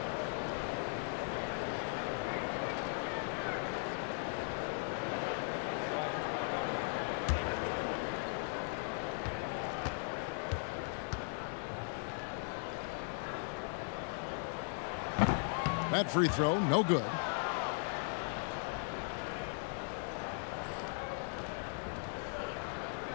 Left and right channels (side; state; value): right; silent; 52 dB below the other